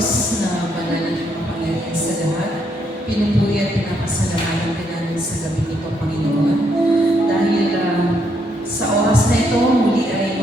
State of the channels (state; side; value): normal; both; correlation 0.74